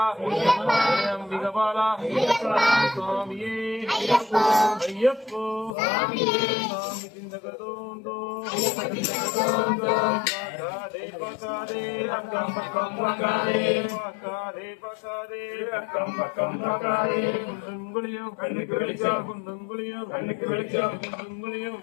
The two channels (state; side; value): drops out; right; at 5.8 s